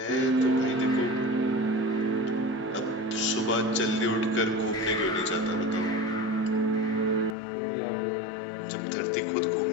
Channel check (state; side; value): drops out; right; at 7.4 s